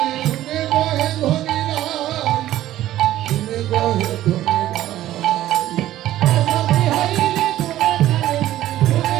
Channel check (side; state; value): left; quieter; 13.9 dB